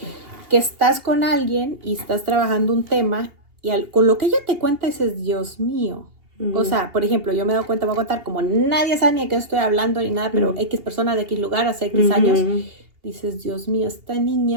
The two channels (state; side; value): late; left; 2.8 ms